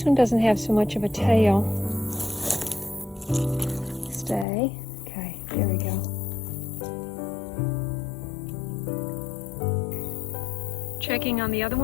one doesn't have so much of a tail. Stay. Okay, there we go. Checking on the other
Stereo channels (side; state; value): right; drops out; at 4.5 s